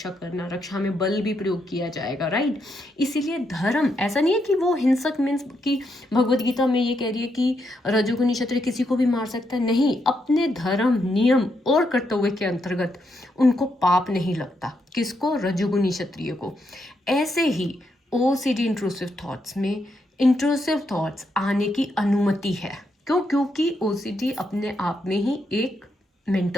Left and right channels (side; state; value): both; normal; correlation 0.80